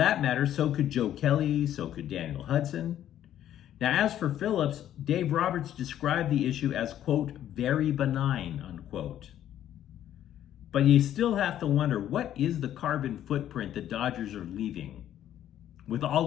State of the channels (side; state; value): right; quieter; 11.4 dB